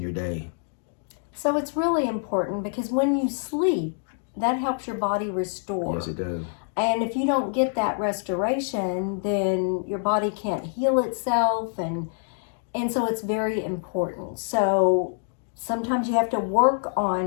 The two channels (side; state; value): right; silent; digital silence